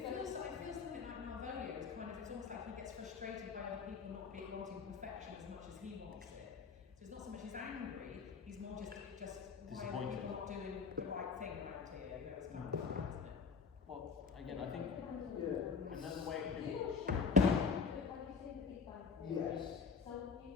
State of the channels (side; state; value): right; quieter; 5.5 dB